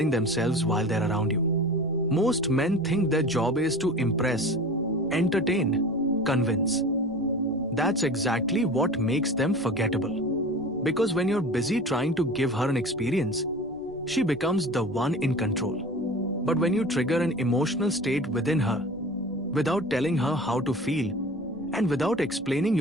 themselves while they're around you. Most men think their job is to impress, entertain, convince. That's exactly what makes them forgettable. Because when you're busy trying to give her an experience, she becomes the one in control. But when you trigger an emotional state within her, without telling her how to feel, and without explaining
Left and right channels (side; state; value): left; noise; rumble, 25 dB below the sound